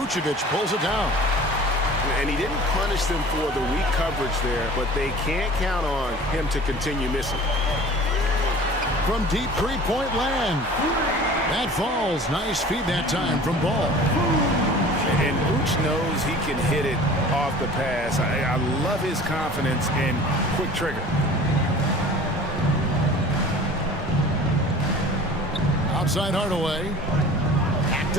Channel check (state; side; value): normal; both; correlation 0.43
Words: pulls it down. And he didn't punish them for the weak coverage there, but they can't count on him to continue missing. From deep three-point land. That falls. Nice feed that time from Ball. And Vooch knows he can hit it off the pass. I love his confidence and quick trigger. Outside Hardaway. Back